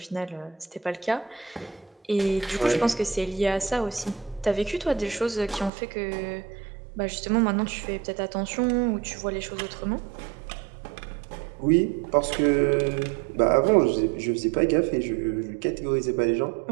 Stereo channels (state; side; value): drops out; left; at 5.7 s